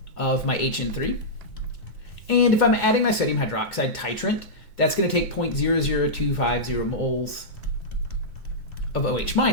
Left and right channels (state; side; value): late; right; 2.2 ms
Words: of my HN3. And if I'm adding my sodium hydroxide titrant, that's going to take 0.00250 moles of OH